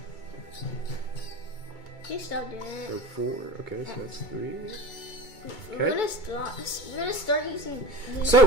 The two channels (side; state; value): right; late; 2.2 ms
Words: You stop doing it. So 4. Okay, so that's 3. We're Okay. gonna start using.